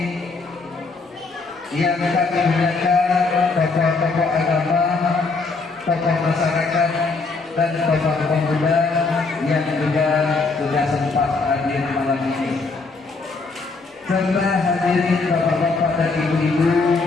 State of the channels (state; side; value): quieter; right; 4.0 dB